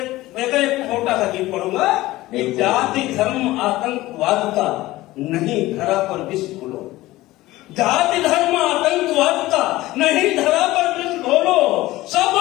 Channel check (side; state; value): right; quieter; 17.7 dB